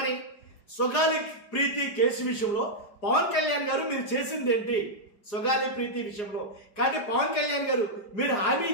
సుగాలి ప్రీతి కేసు విషయంలో పవన్ కళ్యాణ్ గారు మీరు చేసింది ఏంటి? సుగాలి ప్రీతి విషయంలో కానీ పవన్ కళ్యాణ్ గారు మీరు హామీ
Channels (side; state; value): right; late; 4.9 ms